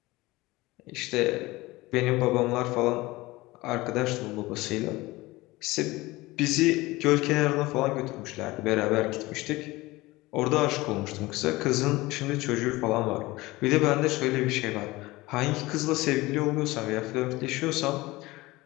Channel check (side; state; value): right; quieter; 20.4 dB